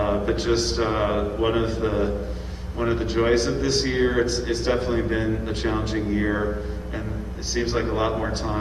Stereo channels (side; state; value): both; identical; correlation 1.00